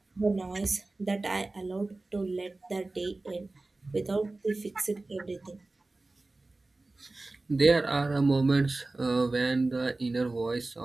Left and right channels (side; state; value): left; quieter; 3.1 dB